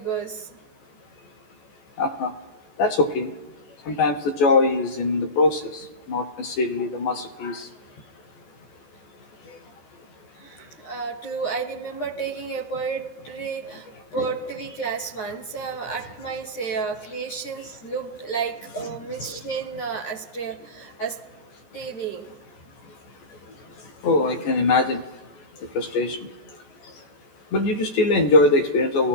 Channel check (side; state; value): right; late; 13 ms